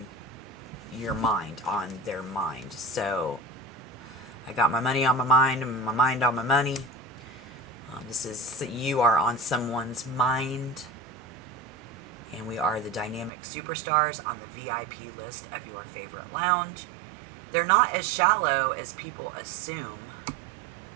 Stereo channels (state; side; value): drops out; left; at 13.3 s